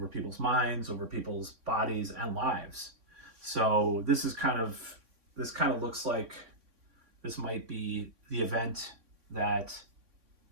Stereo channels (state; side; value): late; left; 3.6 ms